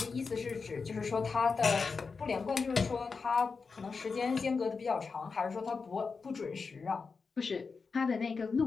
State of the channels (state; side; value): quieter; right; 4.8 dB